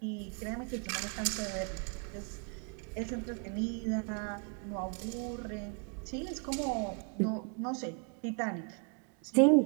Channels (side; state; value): left; quieter; 39.8 dB